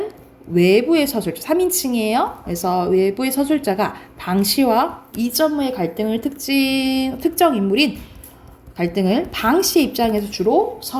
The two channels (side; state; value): both; identical; correlation 1.00